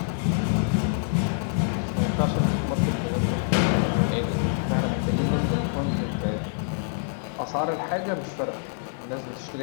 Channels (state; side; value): silent; right; digital silence